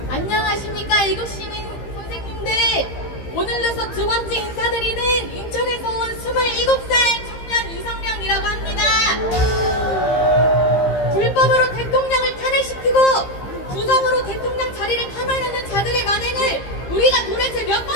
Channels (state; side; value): late; right; 15 ms